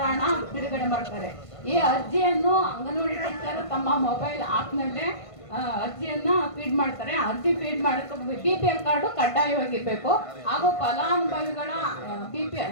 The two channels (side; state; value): right; late; 1.5 ms